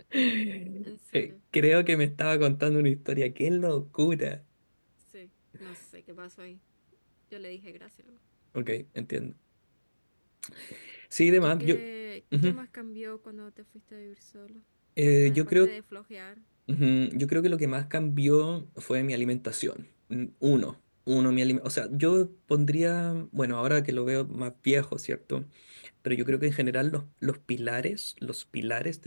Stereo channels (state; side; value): inverted; both; correlation -1.00